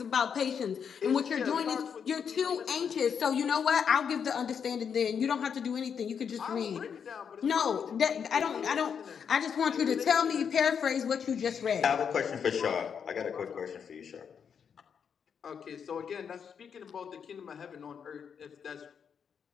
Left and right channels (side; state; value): right; quieter; 7.1 dB